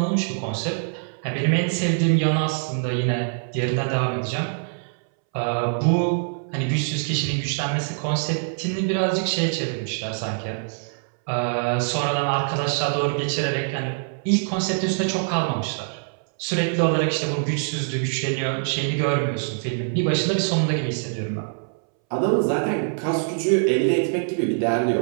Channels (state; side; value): silent; left; 63 dB below the other